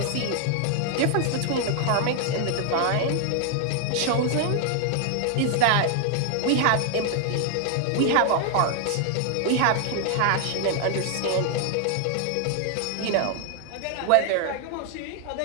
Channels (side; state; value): both; different; correlation 0.00